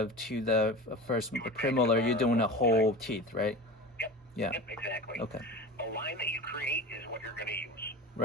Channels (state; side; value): normal; both; correlation 0.32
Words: to the first premolar, you're doing a whole teeth, right? Yep. Yeah. Yep, exactly. Okay. The line that you create is what you're going to use.